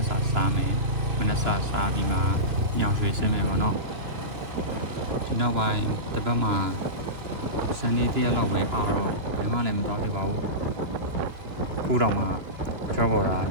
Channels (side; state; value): left; late; 2.9 ms